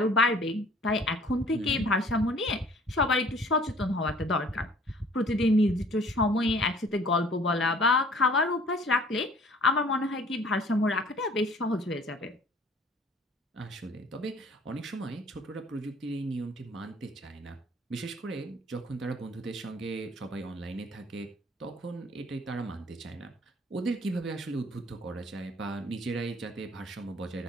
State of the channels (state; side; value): normal; both; correlation 0.53